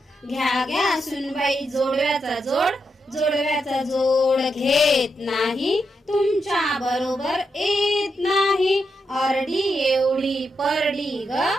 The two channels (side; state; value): both; normal; correlation 0.83